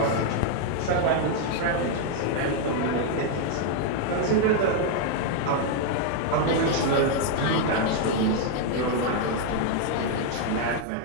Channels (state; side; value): different; both; correlation 0.00